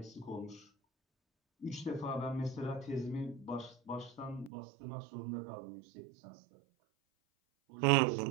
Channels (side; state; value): left; drops out; at 4.5 s